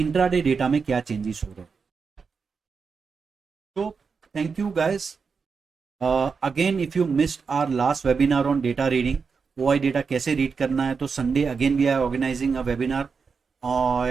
data में क्या चेंजेस हो रहे हैं. तो thank you guys. Again if you missed our last webinar on data reading, OI data कैसे रीड करना है, तो Sunday again we are organising a webinar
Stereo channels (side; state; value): left; quieter; 5.4 dB